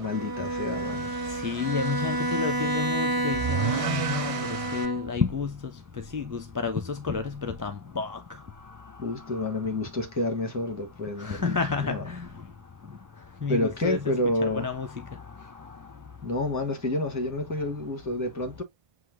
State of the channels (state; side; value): late; left; 1.6 ms